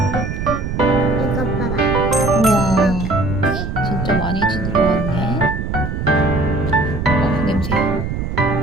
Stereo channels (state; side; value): noise; right; rumble, 4 dB below the sound